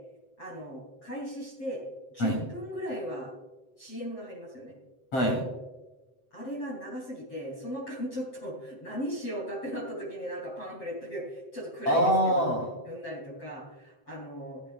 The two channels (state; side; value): late; right; 7.8 ms